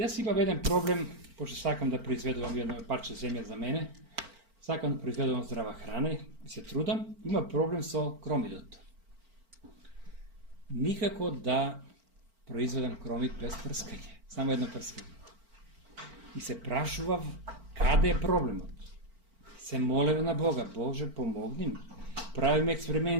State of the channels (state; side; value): late; left; 4.4 ms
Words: имам еден проблем, пошто сакам да произведувам едно парче земја за мене, сакам да произведувам здрава храна и се трудам, има проблем со кромидот. Никако да произведам кромид без прскање, само едно прскање. И се прашував каде е проблемот. Се молев на Бога, Боже, помогни ми. Правим